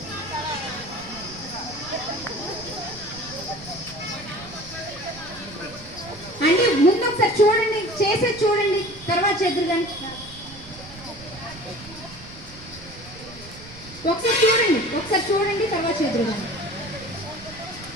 అంటే ముందు ఒకసారి చూడండి, చేసేది చూడండి, తర్వాత చేద్దరు కానీ. ఒకసారి చూడండి, తర్వాత చేద్దరు కానీ.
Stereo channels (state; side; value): noise; right; rumble, 17 dB below the sound